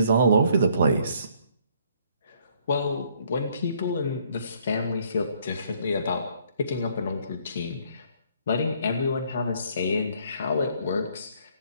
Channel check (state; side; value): inverted; both; correlation -0.64